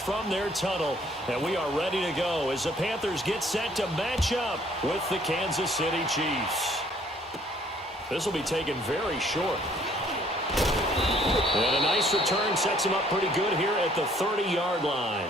their tunnel. And we are ready to go as the Panthers get set to match up with the Kansas City Chiefs. This will be taken very short. And a nice return sets him up pretty good here at the 30-yard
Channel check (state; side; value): normal; both; correlation 0.61